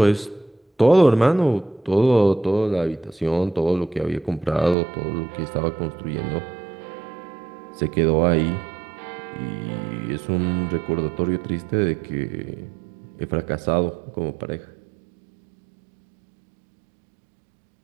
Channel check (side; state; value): left; drops out; at 4.8 s